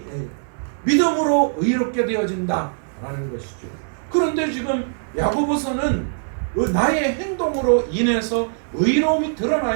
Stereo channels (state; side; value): silent; left; digital silence